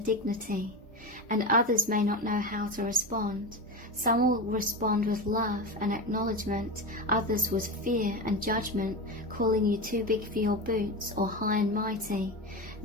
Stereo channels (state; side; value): normal; both; correlation 0.20